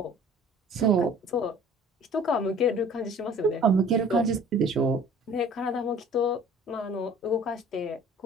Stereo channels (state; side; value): normal; both; correlation 0.49